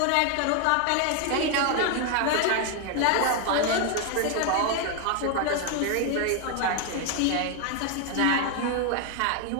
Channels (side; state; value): both; different; correlation 0.01